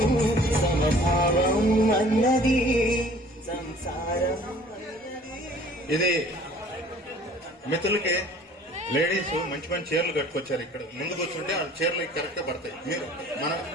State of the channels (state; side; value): normal; both; correlation 0.52